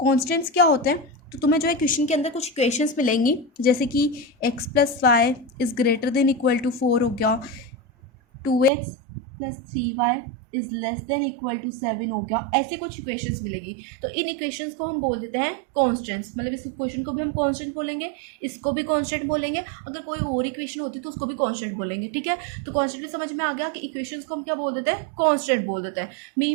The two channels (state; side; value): drops out; left; at 8.7 s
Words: क्या होते हैं, तो तुम्हें जो है क्वेश्चन के अंदर कुछ इक्वेशंस मिलेंगी, जैसे कि x plus y is greater than equal to 4 हो गया, 2x plus 3y is less than equal to 7 हो गया। ऐसे कुछ इक्वेशंस मिलेगी, तो इन इक्वेशंस को हम बोल देते हैं कॉन्स्टेंट्स। मतलब इस इक्वेशन को भी हम कॉन्स्टेंट बोलेंगे, इसको भी कॉन्स्टेंट बोलेंगे, अगर कोई और इक्वेशन होती तो उसको भी कॉन्स्टेंट बोलेंगे। ठीक है, तो कॉन्स्टेंट भी समझ में आ गया कि इक्वेशंस को हम क्या बोल देते हैं, कॉन्स्टेंट बोल देते हैं।